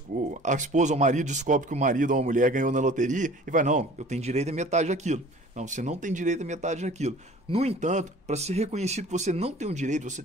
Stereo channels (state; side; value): normal; both; correlation 0.46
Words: A esposa ou o marido descobre que o marido ou a mulher ganhou na loteria e vai, não, eu tenho direito a metade daquilo. Não, você não tem direito a metade daquilo. No entanto, para ser reconhecido que você não tem um direito, você